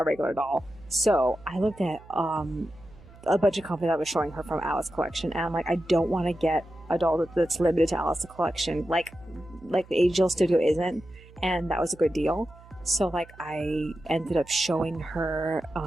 regular doll. So I looked at a bunch of company that was showing her from Alice collection, and I'm like, I don't want to get a doll that's limited to Alice the Collection, like the Angel Studio isn't, and that was a good deal. So like I ended up showing her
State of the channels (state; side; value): noise; right; hum, 22 dB below the sound